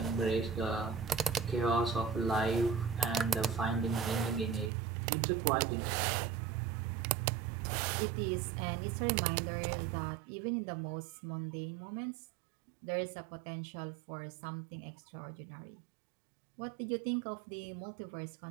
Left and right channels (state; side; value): drops out; left; at 4.7 s